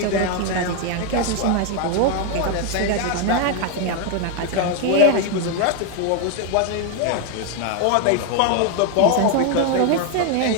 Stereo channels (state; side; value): different; both; correlation 0.01